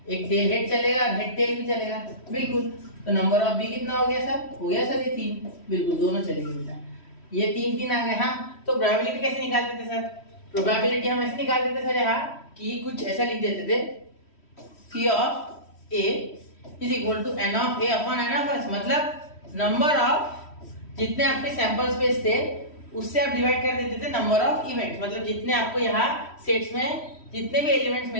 एक टेल हेड चलेगा और हेड टेल भी चलेगा, बिल्कुल। तो नंबर ऑफ बी कितना हो गया सर? हो गया सर ये 3, बिल्कुल दोनों चलेंगे बेटा, ये 3 आ गए। हाँ, तो प्रोबेबिलिटी कैसे निकालते थे सर? प्रोबेबिलिटी हम ऐसे निकाल देते सर यहाँ कि कुछ ऐसा लिख देते थे, P of A is equal to N of A upon N of S, मतलब नंबर ऑफ जितने आपके सैंपल स्पेस थे उससे आप डिवाइड कर देते थे नंबर ऑफ इवेंट्स, मतलब जितने आपको यहाँ सेट्स में जितने भी एलिमेंट्स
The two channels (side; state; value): right; late; 3.1 ms